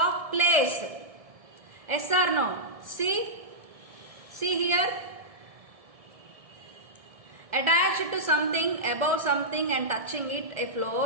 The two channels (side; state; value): left; late; 1.7 ms